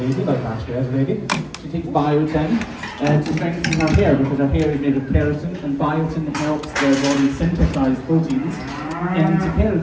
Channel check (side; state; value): both; identical; correlation 1.00